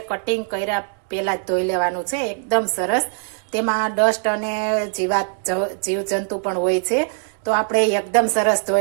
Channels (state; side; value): silent; left; 63 dB below the other